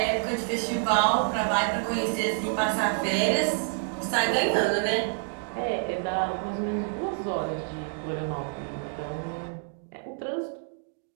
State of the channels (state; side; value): silent; left; 59 dB below the other